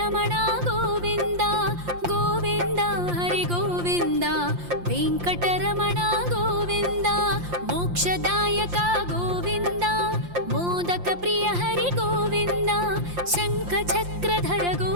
गोविन्द गोविन्द हरि गोविन्द वेङ्कटरमण गोविन्द मोक्षदायक गोविन्द मोदक प्रिय हरि गोविन्द शङ्खचक्रधर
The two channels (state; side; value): late; left; 5.7 ms